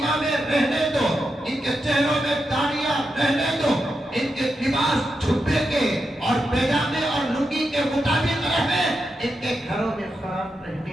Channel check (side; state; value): both; normal; correlation 0.87